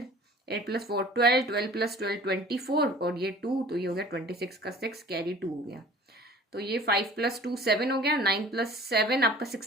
8 + 4 12, 12 + 12 24, और ये 2, तो ये हो गया 26 का 6 कैरी 2 हो गया। तो ये 5 + 2 7 हो गया, 9 + 7 आपका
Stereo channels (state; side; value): normal; both; correlation 0.46